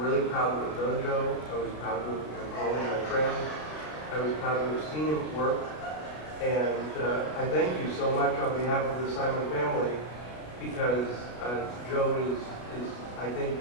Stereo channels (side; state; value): right; late; 33 ms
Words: proud to have known Joe. I was proud to have called him my friend. I was proud to have seen him work. And I thank you so much on behalf of the Simon family, because Joe is, I think,